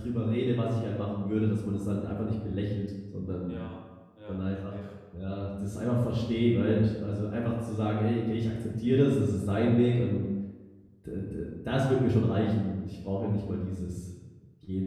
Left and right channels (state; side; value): identical; both; correlation 1.00